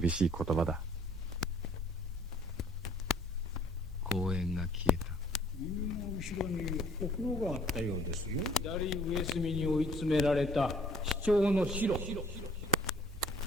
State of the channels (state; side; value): normal; both; correlation 0.59